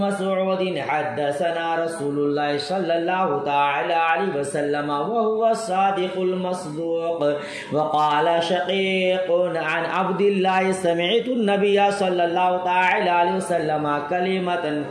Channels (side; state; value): both; identical; correlation 1.00